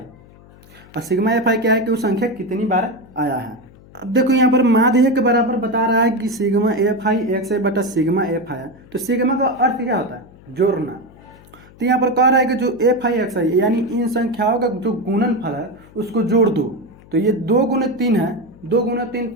और सिग्मा एफ आई क्या है कि वो संख्या कितनी बार आया है। अब देखो यहाँ पर माध्य के बराबर बता रहा है कि सिग्मा एफ आई एक्स आई बटा सिग्मा एफ आई। तो सिग्मा का अर्थ क्या होता है? जोड़ना। तो यहाँ पर कह रहा है कि जो एफ आई एक्स आई यानी इन संख्याओं का जो गुणनफल है उसको जोड़ दो। तो ये 2 गुने 3 है, 2 गुने 3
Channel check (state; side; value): noise; left; hum, 24 dB below the sound